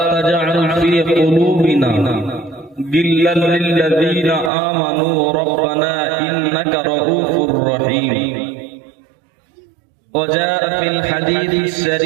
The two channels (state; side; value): drops out; left; at 4.5 s